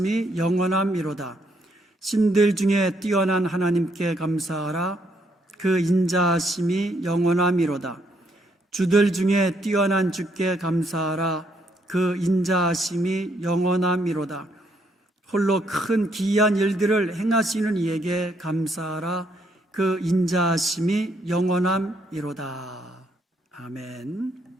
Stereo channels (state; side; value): normal; both; correlation 0.72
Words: 영원함이로다. 신들 중에 뛰어난 하나님께 감사하라. 그 인자하심이 영원함이로다. 주들 중에 뛰어난 주께 감사하라. 그 인자하심이 영원함이로다. 홀로 큰 기이한 일들을 행하시는 이에게 감사하라. 그 인자하심이 영원함이로다. 아멘.